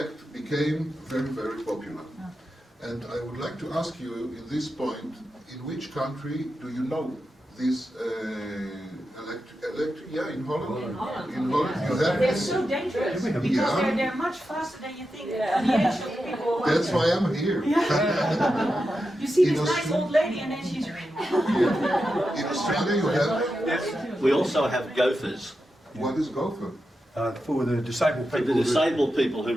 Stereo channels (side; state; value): both; normal; correlation 0.89